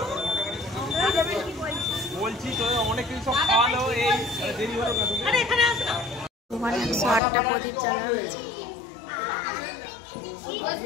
বলছি তো অনেক কিছু সব খাওয়ালো। এই দেরি হলো ওখানে 108টা প্রদীপ জ্বালা হয়েছে।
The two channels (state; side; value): drops out; right; at 7.2 s